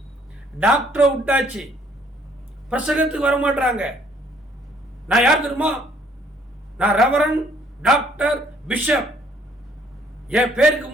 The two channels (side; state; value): both; normal; correlation 0.63